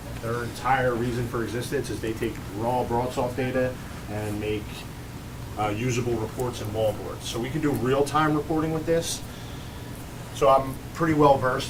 Their entire reason for existence is they take raw BroadSoft data and make usable reports and wallboards. So we can do real-time reporting with this. So I'm pretty well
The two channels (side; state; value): both; identical; correlation 1.00